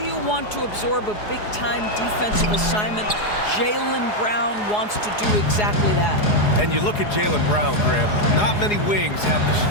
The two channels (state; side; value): late; right; 4.8 ms